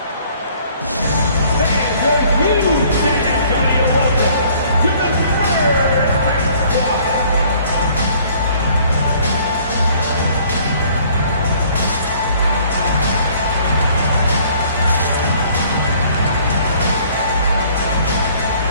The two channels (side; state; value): both; inverted; correlation -0.57